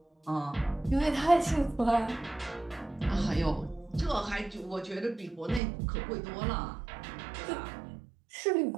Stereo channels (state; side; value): drops out; left; at 5.6 s